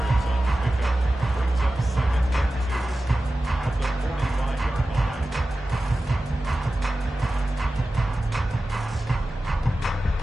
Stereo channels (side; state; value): both; normal; correlation 0.95